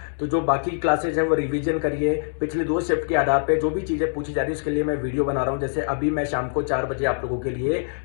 तो जो बाकी क्लासेज है वो रिवीजन करिए। पिछली 2 शिफ्ट के आधार पर जो भी चीजें पूछी जा रही है उसके लिए मैं वीडियो बना रहा हूँ। जैसे अभी मैं शाम को 4 बजे आप लोगों के लिए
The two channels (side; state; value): right; silent; digital silence